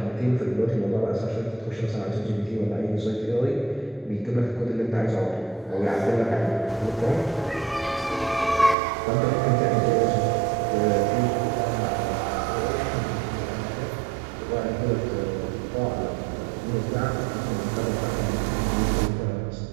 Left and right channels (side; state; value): left; drops out; at 8.8 s